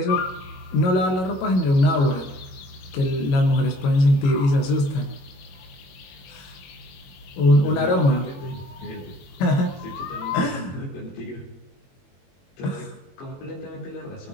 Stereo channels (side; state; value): right; late; 21 ms